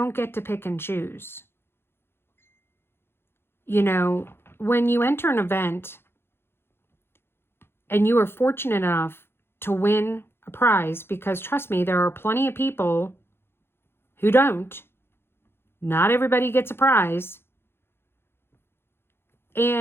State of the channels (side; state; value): right; late; 0.11 ms